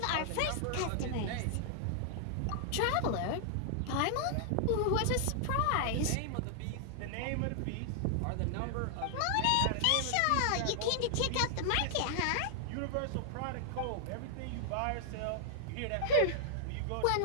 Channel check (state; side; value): different; both; correlation -0.01